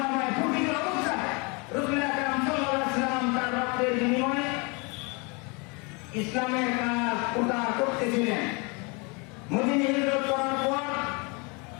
প্রতিকূল অবস্থায় রাসূল আকরাম সাল্লাল্লাহু আলাইহি ওয়াসাল্লাম তার রক্তের বিনিময়ে ইসলামের কাজ প্রচার করতেছিলেন মদিনায় হিজরত করার পর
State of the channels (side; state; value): right; quieter; 30.4 dB